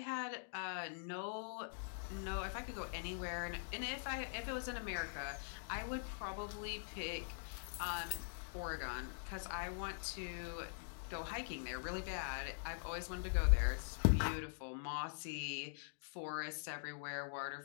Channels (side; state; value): right; silent; digital silence